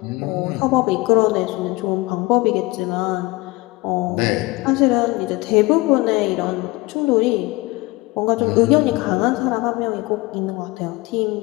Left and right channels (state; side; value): quieter; right; 22.1 dB